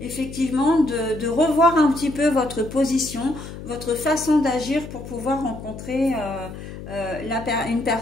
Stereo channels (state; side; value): noise; left; hum, 12 dB below the sound